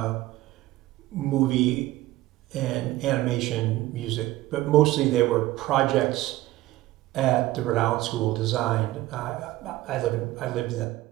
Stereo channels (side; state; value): left; quieter; 17.0 dB